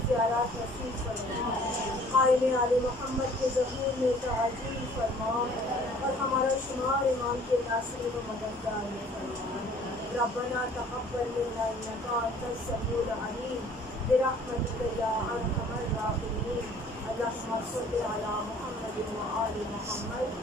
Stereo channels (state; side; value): normal; both; correlation 0.53